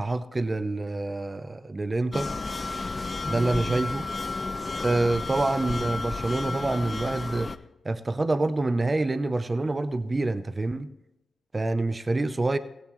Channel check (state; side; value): normal; both; correlation 0.97